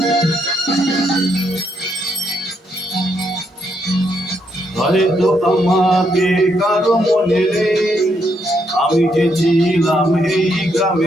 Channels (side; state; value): both; normal; correlation 0.77